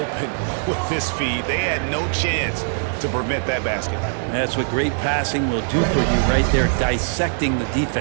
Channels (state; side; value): silent; left; 55 dB below the other